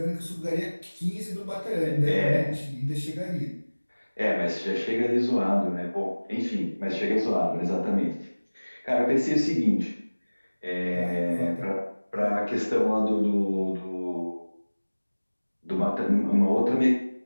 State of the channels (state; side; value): inverted; both; correlation -1.00